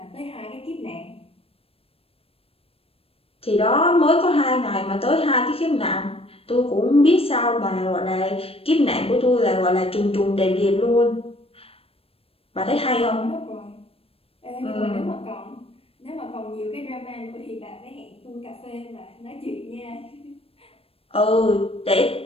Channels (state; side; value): late; right; 0.28 ms